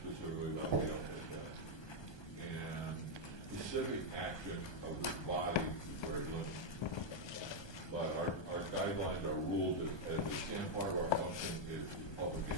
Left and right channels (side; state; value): right; late; 1.2 ms